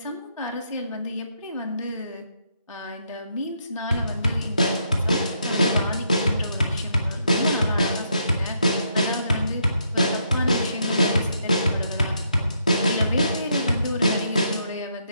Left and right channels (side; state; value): both; inverted; correlation -0.76